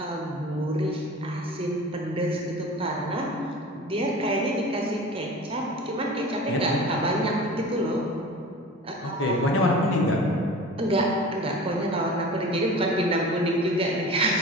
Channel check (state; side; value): normal; both; correlation 0.37